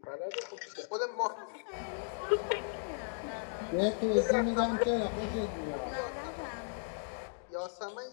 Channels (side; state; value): right; silent; digital silence